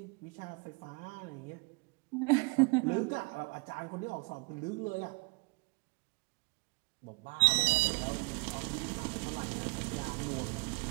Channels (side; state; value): left; quieter; 32.3 dB